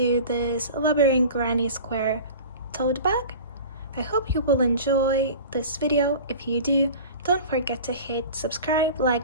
this labyrinth granny square tote bag. I hope you will enjoy this video. If you do, don't forget to hit subscribe,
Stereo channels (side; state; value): both; inverted; correlation -0.37